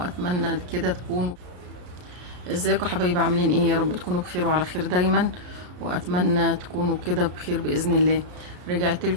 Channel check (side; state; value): left; late; 33 ms